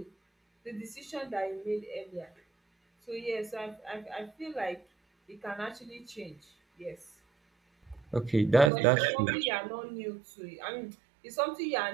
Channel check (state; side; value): drops out; left; at 8.7 s